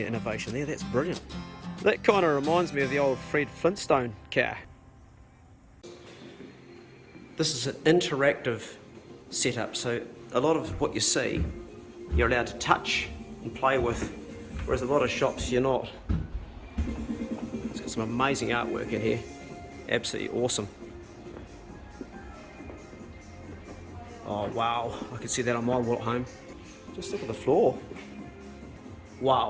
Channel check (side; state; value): both; identical; correlation 1.00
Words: innovation there, that's brilliant. That kind of reminds me of the old Fred Flintstone car. This is an interactive setup, so a lot of what you see you're allowed to touch and play with, whereas a lot of shops you're not. It's got some amazing artwork in here, absolutely awesome. Oh wow, I can see that on my wall at home. Just look at the floor.